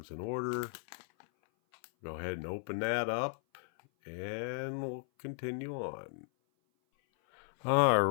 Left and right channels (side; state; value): right; silent; 54 dB below the other